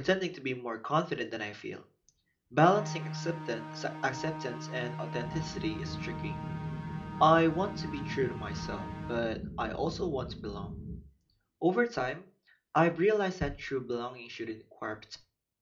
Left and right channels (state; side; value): identical; both; correlation 1.00